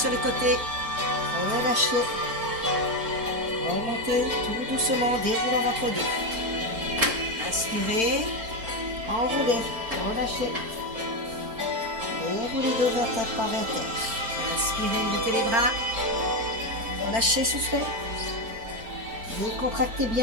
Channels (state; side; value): late; left; 4.4 ms